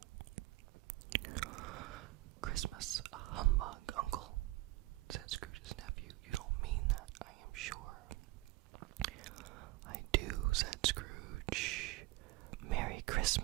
"Christmas, a humbug, Uncle," said Scrooge's nephew. "You don't mean that, I am sure." "I do," said Scrooge. "Merry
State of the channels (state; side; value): quieter; left; 20.0 dB